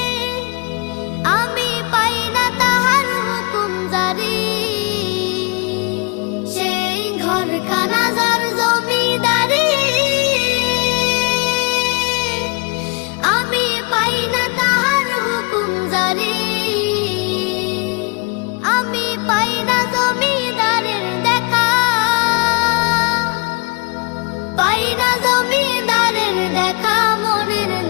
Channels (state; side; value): quieter; right; 29.0 dB